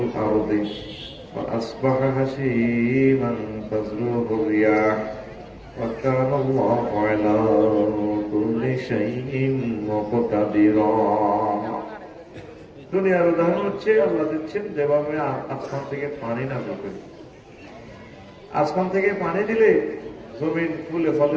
فَأَصْبَحَ هَشِيمًا تَذْرُوهُ الرِّيَاحُ وَكَانَ اللَّهُ عَلَى كُلِّ شَيْءٍ مُقْتَدِرًا। দুনিয়ার উদাহরণ হচ্ছে আল্লাহ দিচ্ছেন যেভাবে আসমান থেকে পানি নামে করি। আসমান থেকে পানি দিলে জমিন ফুলে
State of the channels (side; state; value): both; identical; correlation 1.00